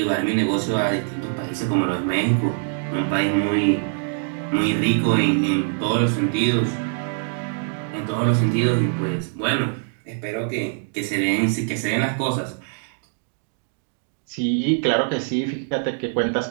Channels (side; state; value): left; silent; digital silence